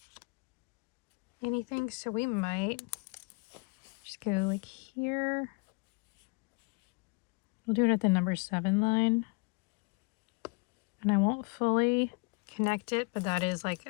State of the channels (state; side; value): quieter; right; 31.2 dB